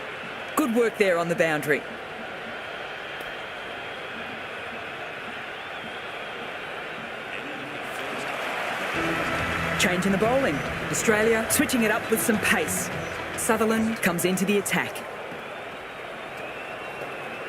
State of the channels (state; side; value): identical; both; correlation 1.00